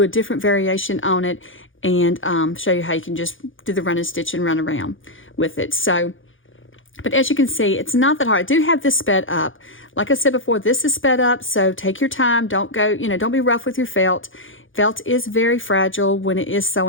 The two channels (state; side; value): late; right; 0.58 ms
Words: a different variation on it, and show you how you can just do the running stitch and run around with it. So, but as you can see, it's not that hard. I do have this sped up. Like I said before, this is sped up, so take your time. Don't go, don't be rough with your felt. Felt is very fragile when it is